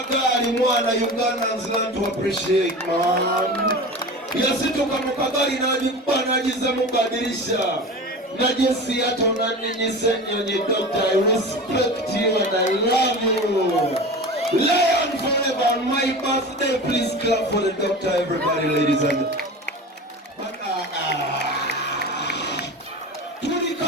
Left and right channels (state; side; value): normal; both; correlation 0.32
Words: mwana Ugandans learn to appreciate man. Yasituka mukagari najiza mubadilisha. Najesi yato nani senyo doctor. I respect you and I love you. Lion forever on my birthday. Please clap for the doctor, everybody, ladies and